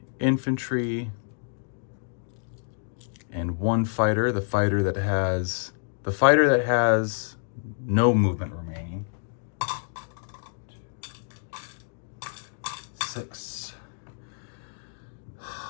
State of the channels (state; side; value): silent; right; digital silence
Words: infantry, and 1 fighter, the fighter that has no movement remaining. 6.